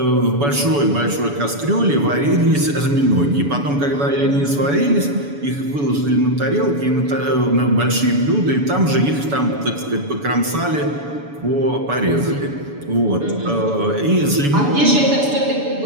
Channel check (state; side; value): late; left; 7.0 ms